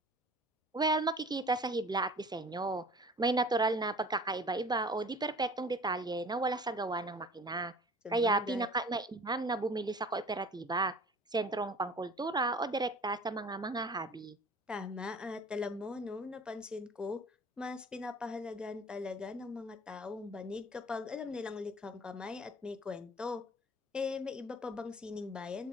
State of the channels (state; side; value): normal; both; correlation 0.45